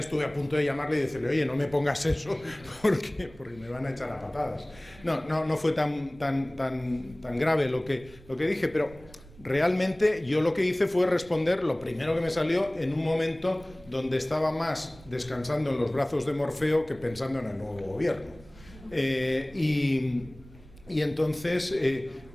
a punto de llamarle y decirle: oye, no me pongas eso porque me van a echar a patadas. No fue tan grave lo que dije, pero realmente yo lo que hice fue responder lo primero que me salió en un momento donde estaba más descansando en los brazos de Morfeo que pensando en el nuevo gobierno. Y entonces,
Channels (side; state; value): right; noise; rumble, 22 dB below the sound